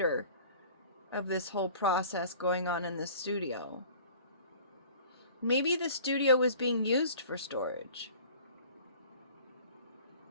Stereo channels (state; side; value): inverted; both; correlation -0.46